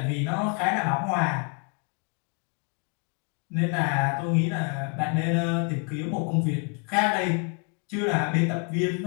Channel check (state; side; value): quieter; right; 36.7 dB